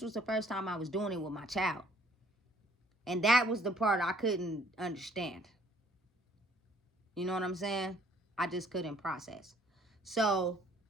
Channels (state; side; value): normal; both; correlation 0.60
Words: was the first time I was doing it with my child. And that was the part I couldn't understand. You know what I'm saying? I just couldn't process. So